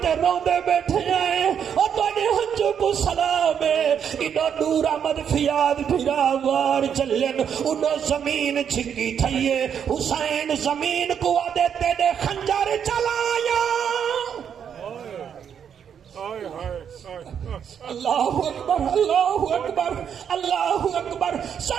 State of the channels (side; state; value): left; quieter; 8.1 dB